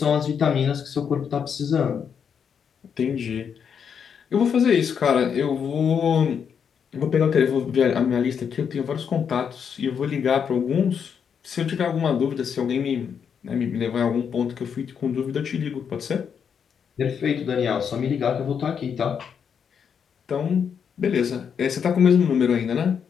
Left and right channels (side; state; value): right; quieter; 7.2 dB